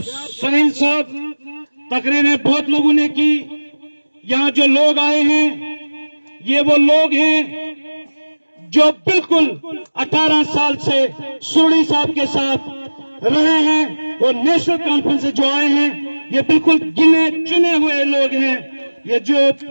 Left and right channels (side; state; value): both; inverted; correlation -1.00